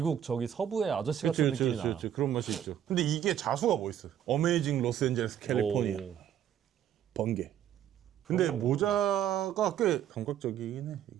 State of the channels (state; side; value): quieter; left; 10.2 dB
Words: 저기 서부의 아저씨 같은 느낌이 나. 그렇죠. 그런 맛이 있죠. 근데 이게 자수가 멋있어. 어메이징 로스앤젤레스 캘리포니아. 번개. 근데 모자가 꽤 감각적이긴 해.